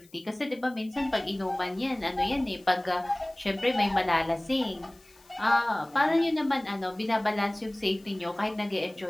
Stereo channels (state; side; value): noise; left; hiss, 28 dB below the sound